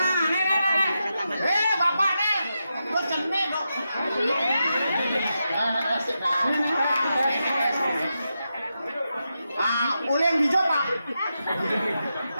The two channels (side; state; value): both; inverted; correlation -0.87